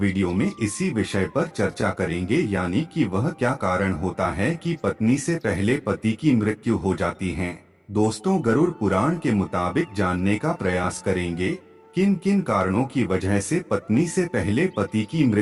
में इसी विषय पर चर्चा करेंगे, यानी कि वह क्या कारण होता है कि पत्नी से पहले पति की मृत्यु हो जाती है। दोस्तों, गरुड़ पुराण के मुताबिक जानने का प्रयास करेंगे किन किन कारणों की वजह से पत्नी से पहले पति की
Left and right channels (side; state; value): both; identical; correlation 1.00